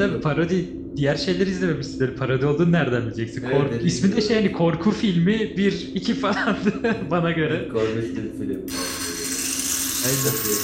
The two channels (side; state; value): both; identical; correlation 1.00